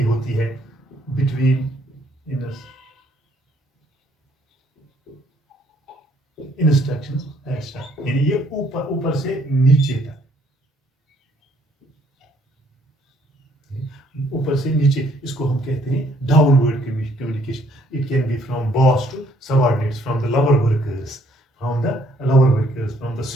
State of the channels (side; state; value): both; normal; correlation 0.65